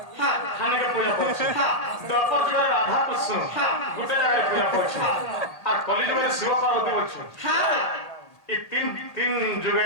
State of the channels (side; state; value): right; late; 1.8 ms